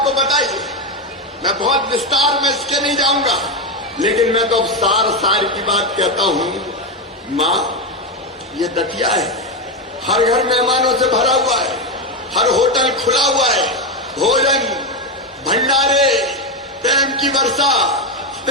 बताई, मैं बहुत विस्तार में इसके नहीं जाऊंगा, लेकिन मैं तो अब सार की बात कहता हूं। मां, ये दतिया है, हर घर मेहमानों से भरा हुआ है, हर होटल खुला हुआ है, भोजन, भंडारे, प्रेम की वर्षा,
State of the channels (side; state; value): both; normal; correlation 0.09